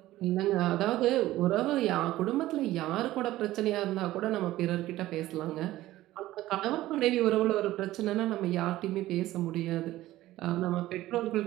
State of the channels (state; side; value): quieter; left; 15.8 dB